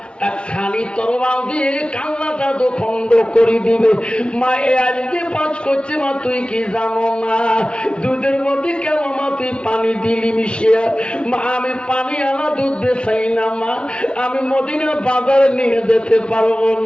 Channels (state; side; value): late; right; 0.057 ms